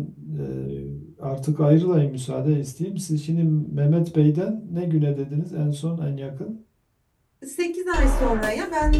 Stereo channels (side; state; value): both; identical; correlation 1.00